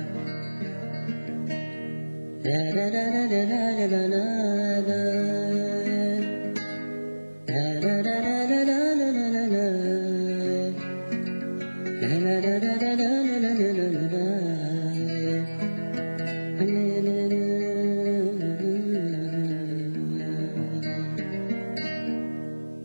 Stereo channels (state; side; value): inverted; both; correlation -1.00